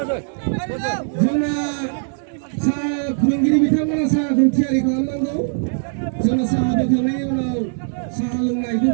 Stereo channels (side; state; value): left; silent; 62 dB below the other